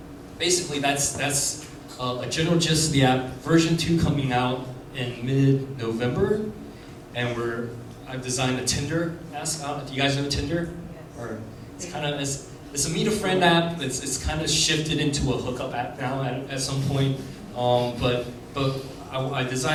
basically that's a general gist of the app. Version 2 coming out in mid-November, and I've designed a Tinder-esque app. Do you guys know Tinder? Or it's kind of it's a meet a friend app. It's kind of shifted into a hookup app now at some point. But I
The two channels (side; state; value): both; identical; correlation 1.00